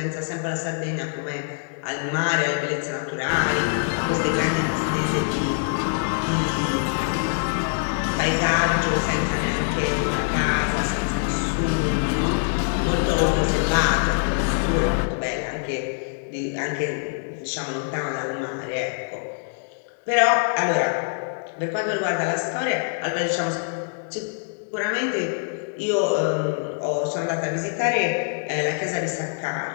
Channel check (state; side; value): silent; right; digital silence